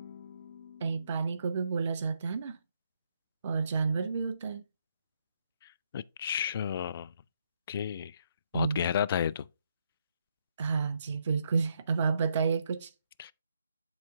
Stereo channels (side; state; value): both; inverted; correlation -0.75